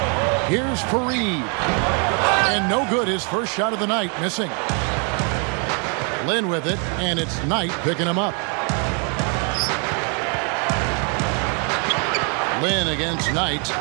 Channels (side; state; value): left; quieter; 37.6 dB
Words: Here's Fareed. And no good, his first shot of the night, missing. Lin with it, and it's Knight picking him up. Lin against Knight.